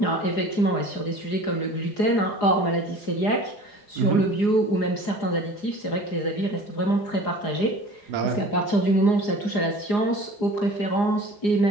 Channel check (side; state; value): right; late; 4.8 ms